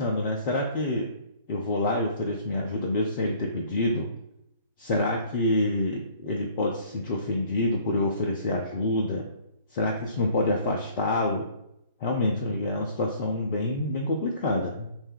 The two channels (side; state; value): both; inverted; correlation -0.54